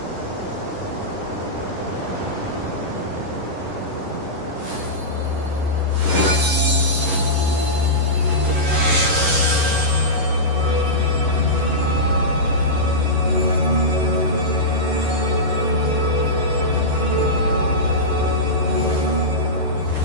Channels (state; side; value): late; left; 11 ms